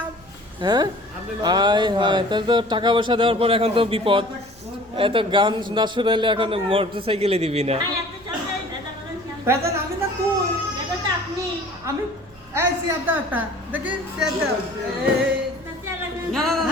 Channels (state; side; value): noise; right; rumble, 26 dB below the sound